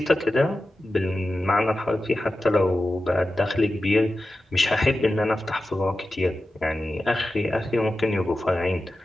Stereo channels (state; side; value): normal; both; correlation 0.93